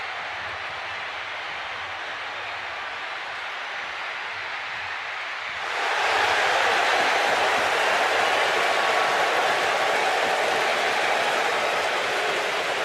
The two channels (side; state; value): both; identical; correlation 1.00